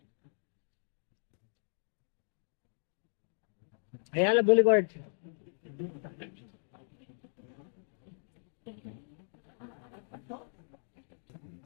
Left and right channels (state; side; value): silent; right; digital silence